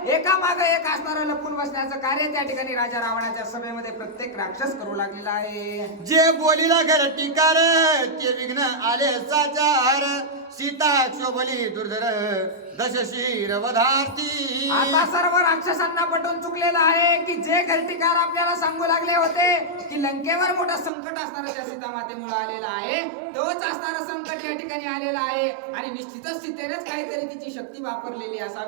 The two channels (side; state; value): left; drops out; at 20.9 s